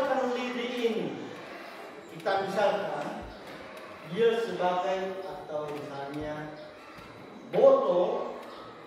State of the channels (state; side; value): identical; both; correlation 1.00